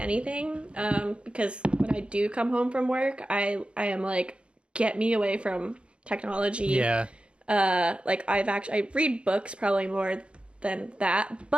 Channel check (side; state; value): left; late; 0.058 ms